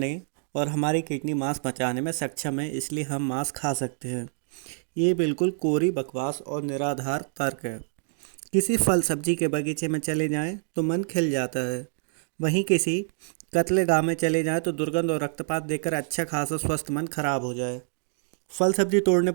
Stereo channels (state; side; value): silent; left; 60 dB below the other